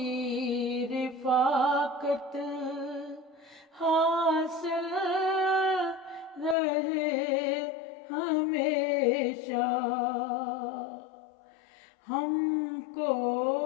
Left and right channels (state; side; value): drops out; right; at 6.6 s